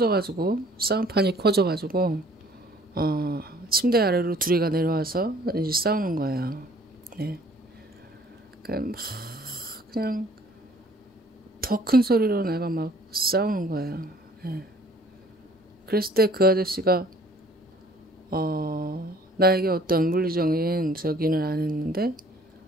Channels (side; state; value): both; normal; correlation 0.56